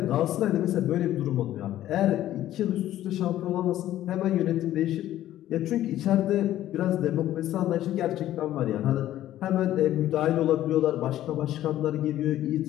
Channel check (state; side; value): quieter; right; 13.2 dB